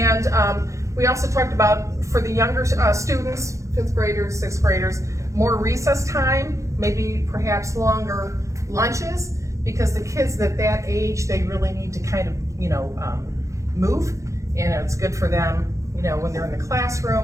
we also talked about for the younger students, 5th graders, 6th graders, more recess time, maybe perhaps longer lunches, because the kids at that age, they really need to kind of, move, and it's good for them, when they're in the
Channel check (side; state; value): left; late; 0.15 ms